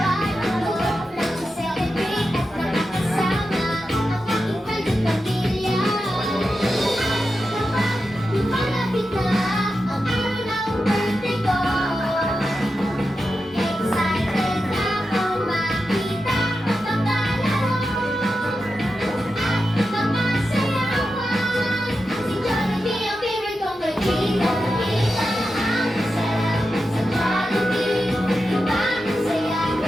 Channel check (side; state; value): both; normal; correlation 0.90